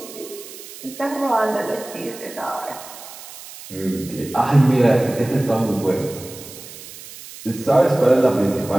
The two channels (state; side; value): noise; right; hiss, 15 dB below the sound